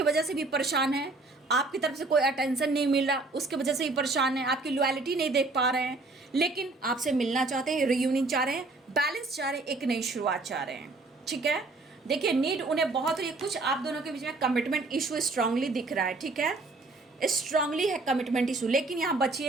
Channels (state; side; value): quieter; left; 3.3 dB